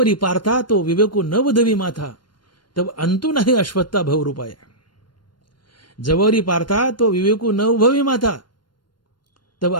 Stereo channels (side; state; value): right; late; 0.71 ms